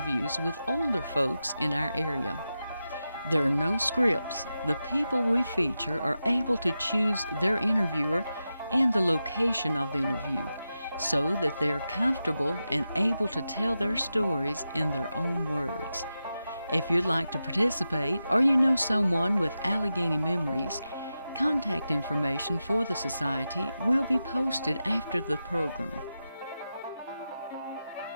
with older folks in our area. There are no scripts. The people we feature are able to choose their interviewer and the location of the interview, so that they're comfortable and able to tell their stories in their own words. If you'd like to participate or you know someone with Alleghany Memories, contact information for the Society will be posted after the program.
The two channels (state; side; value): inverted; both; correlation -0.91